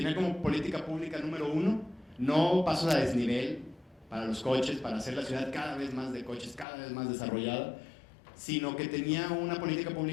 como política pública número 1, no pasos a desnivel para los coches, para hacer la ciudad cada vez más de coches, cada vez más desarrollada, sino que tenía una política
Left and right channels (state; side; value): drops out; right; at 6.7 s